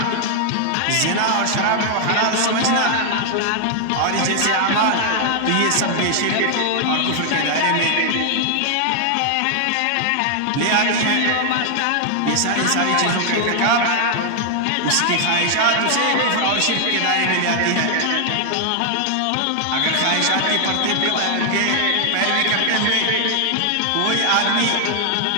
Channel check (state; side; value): different; both; correlation 0.00